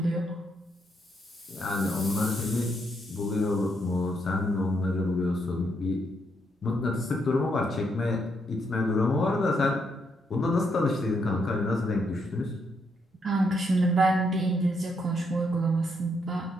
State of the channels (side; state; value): both; normal; correlation 0.77